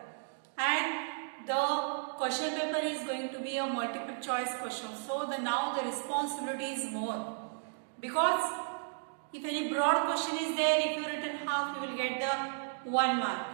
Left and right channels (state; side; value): silent; left; digital silence